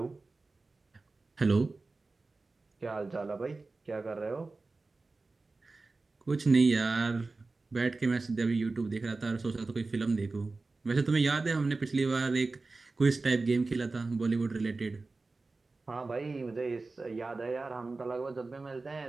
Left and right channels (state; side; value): quieter; left; 3.6 dB